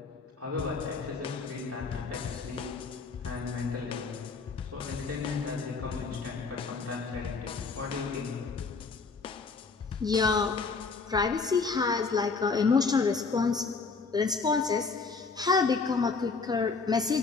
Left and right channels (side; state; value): right; quieter; 4.5 dB